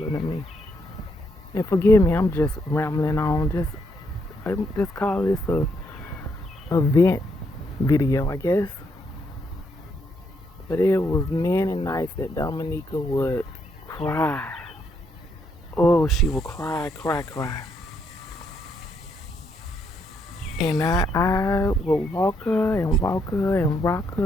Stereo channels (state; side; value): normal; both; correlation 0.75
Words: than me. And forgive me, I'm just rambling on. I just call this a vent video, I guess. But it was many nights that Dominica would cry. Oh, she would cry. And I would walk her and rock